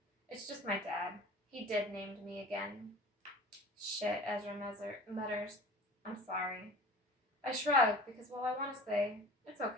it's just my dad. He deadnamed me again. Shit, Ezra mutters. I'm sorry. I shrug, because while I want to say, it's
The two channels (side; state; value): both; normal; correlation 0.42